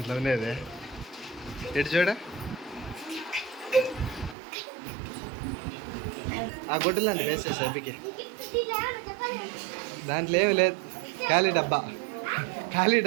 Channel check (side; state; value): left; drops out; at 4.4 s